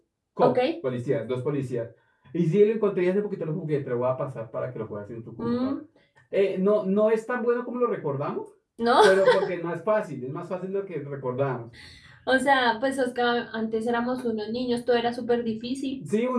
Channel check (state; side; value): identical; both; correlation 1.00